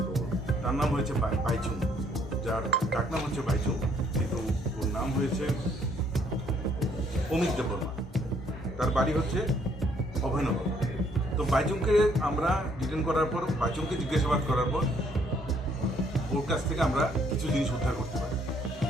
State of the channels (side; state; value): both; normal; correlation 0.66